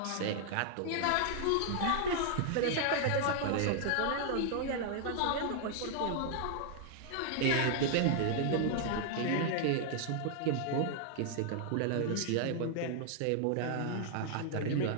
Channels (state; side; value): different; both; correlation 0.00